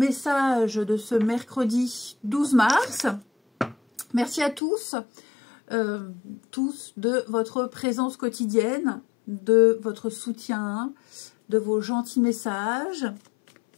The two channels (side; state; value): right; drops out; at 4.6 s